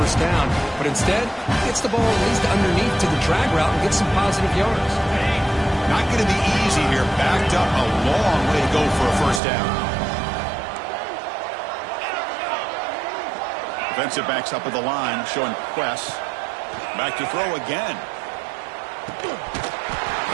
down. But instead, gets the ball at least underneath to the drag route and gets some positive yards. Not going to be easy here. Backed up a long way to go for a first down. Defensive backs up at the line, showing press. Back to throw again.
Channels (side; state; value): left; drops out; at 9.4 s